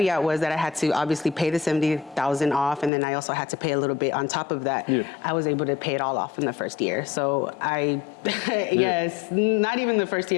was that I had to obviously pay the $70,000 off, and then I also had to pay a little bit on top of that. I was able to pay it all off in the first year. So yes, not even the first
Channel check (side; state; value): right; drops out; at 2.9 s